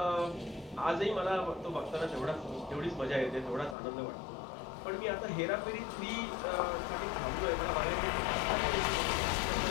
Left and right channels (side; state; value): right; drops out; at 3.8 s